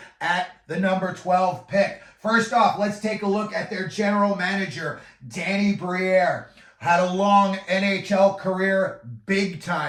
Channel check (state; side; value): identical; both; correlation 1.00